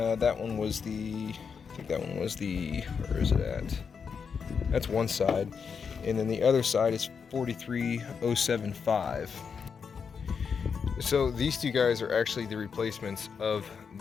that one was the, I think that one was the, where is it at? That's one side. And then the other side is 43075. So these two guys are actually the replacements of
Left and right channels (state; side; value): quieter; right; 6.1 dB